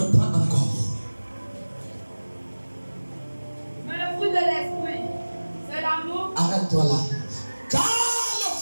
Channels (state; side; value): inverted; both; correlation -1.00